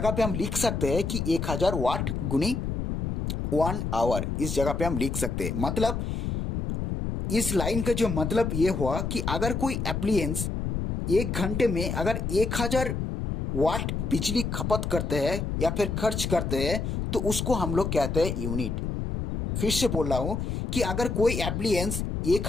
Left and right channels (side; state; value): left; noise; rumble, 2 dB below the sound